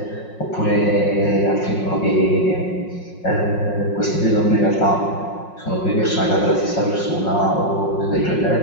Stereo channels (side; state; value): right; late; 5.5 ms